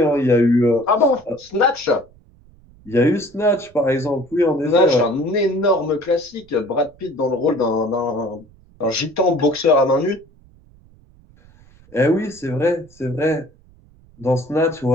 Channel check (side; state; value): right; noise; rumble, 27 dB below the sound